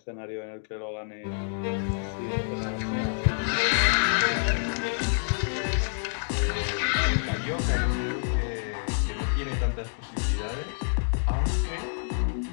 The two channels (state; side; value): silent; right; digital silence